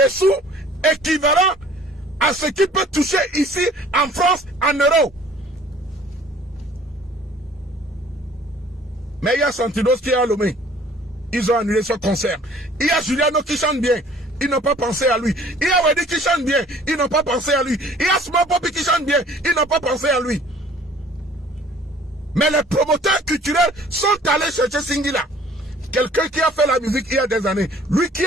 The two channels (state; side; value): normal; both; correlation 0.53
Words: sous équivalents à ce qu'il peut toucher ici en France en euros. Mais il y a Santinos qui est à Lomé. Ils ont annulé ce concert. Il y a Juliano qui chante bien. Ils n'ont pas pensé à lui. Il y a Wedi qui chante bien. Ils n'ont pas pensé à lui. Il y a Small Poppy qui chante bien. Ils n'ont pas pensé à lui. Mais les promoteurs culturels sont allés chercher Singila. Quelqu'un qui a fait la musique il y a des années. Lui qui